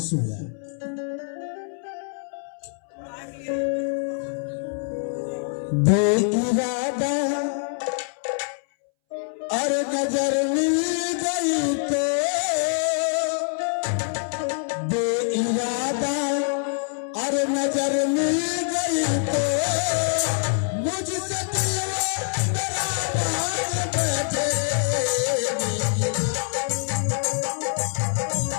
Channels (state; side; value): silent; right; 62 dB below the other